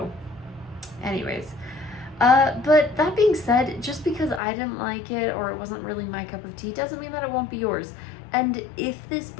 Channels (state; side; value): drops out; right; at 4.4 s